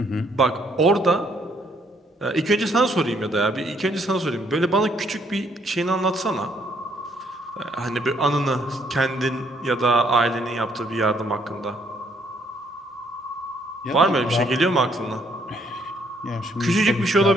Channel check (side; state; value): both; normal; correlation 0.68